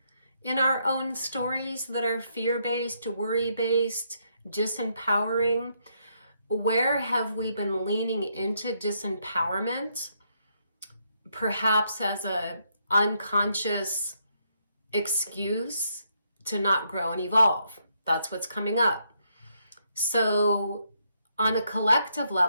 in our own stories that are fear-based, worry-based, disempowering? Where have we been leaning into disempowerment, perhaps as an unconscious excuse to not grow and evolve? That's what's coming up. So on a collective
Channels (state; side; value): inverted; both; correlation -0.75